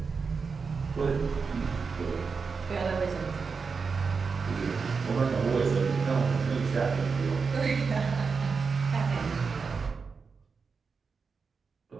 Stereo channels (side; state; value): left; quieter; 5.1 dB